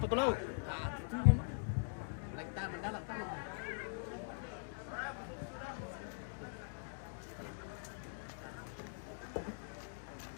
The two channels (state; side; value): silent; right; digital silence